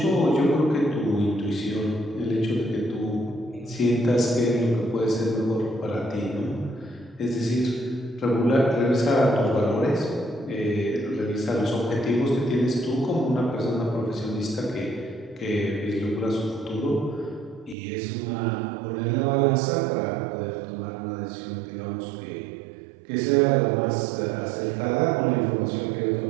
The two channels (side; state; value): left; drops out; at 17.8 s